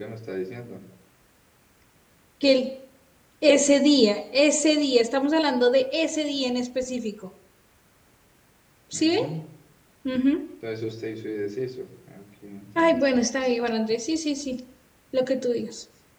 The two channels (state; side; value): identical; both; correlation 1.00